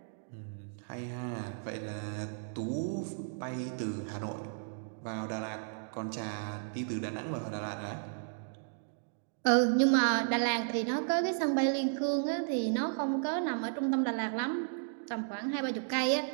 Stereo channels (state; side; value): silent; left; digital silence